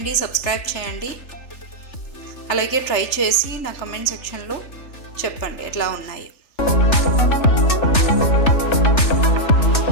సబ్స్క్రైబ్ చేయండి. అలాగే ట్రై చేసి నా కమెంట్ సెక్షన్లో చెప్పండి ఎట్లా ఉన్నాయి.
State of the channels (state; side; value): late; right; 3.4 ms